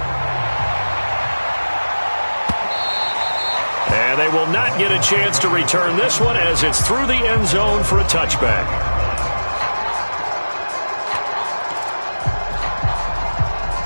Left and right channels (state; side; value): inverted; both; correlation -1.00